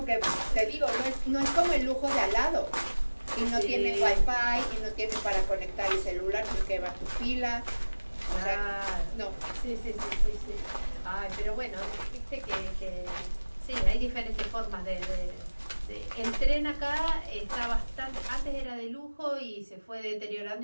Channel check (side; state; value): both; inverted; correlation -1.00